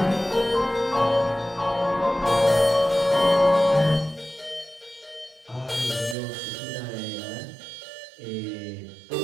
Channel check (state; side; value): drops out; left; at 6.2 s